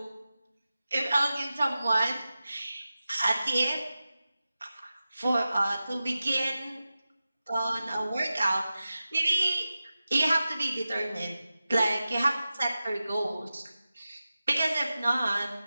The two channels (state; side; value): inverted; both; correlation -0.94